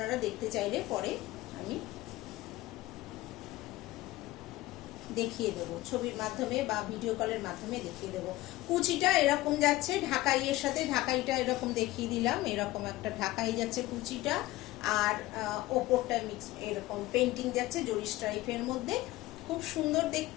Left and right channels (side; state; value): right; quieter; 17.7 dB